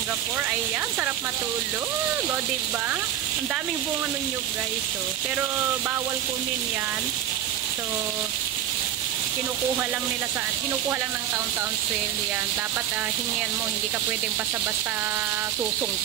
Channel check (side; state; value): left; quieter; 10.8 dB